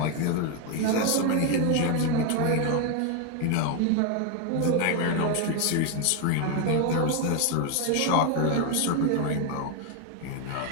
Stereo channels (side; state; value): both; different; correlation 0.01